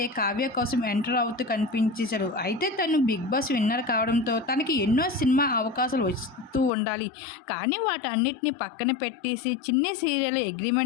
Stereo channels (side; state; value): right; drops out; at 6.7 s